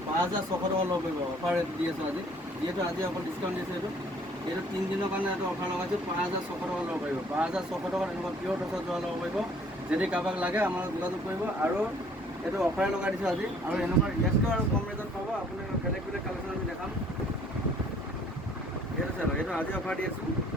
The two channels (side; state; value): both; normal; correlation 0.57